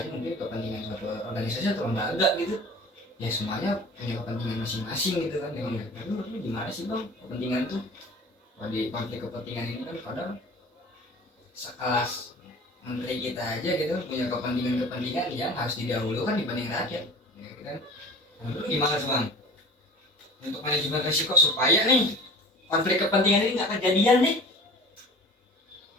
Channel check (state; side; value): normal; both; correlation 0.42